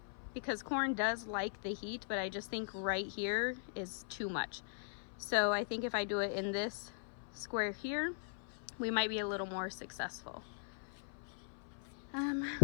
because corn does like the heat, but I just think right here is too much. So I think if I do it in this square here, we might be a little more successful.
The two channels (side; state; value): right; silent; 51 dB below the other